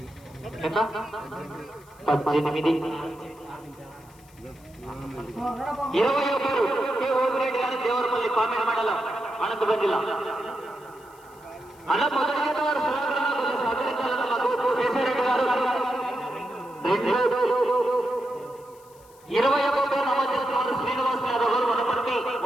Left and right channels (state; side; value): noise; left; hiss, 27 dB below the sound